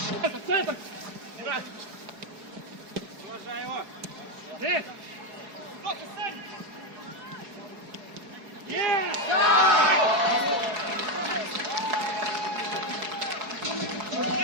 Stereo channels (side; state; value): left; late; 4.7 ms